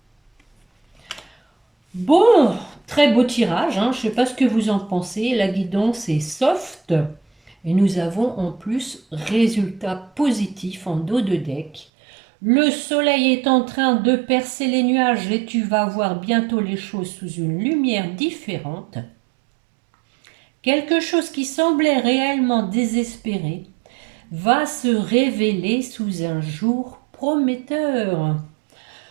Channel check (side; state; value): left; drops out; at 11.9 s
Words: Bon, très beau tirage. Je ne sais pas ce que vous en pensez. La guidance est soft. Et nous avons en plus résultat positif en dos de deck. Le soleil est en train de percer les nuages et tu vas voir bientôt les choses sous une lumière différente. Quelque chose qui semblait réellement désespéré va se révéler sous un jour prometteur.